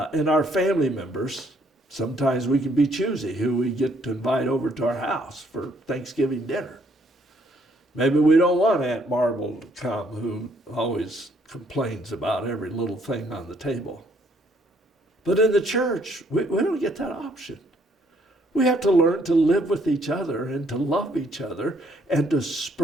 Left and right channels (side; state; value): both; normal; correlation 0.67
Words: family members, sometimes we can be choosy who we get to invite over to our house for Thanksgiving dinner. Maybe we don't want Aunt Marble to come, who always complains about every little thing on the table. But in the church, we don't get that option. We have to learn to live with each other and to love each other and to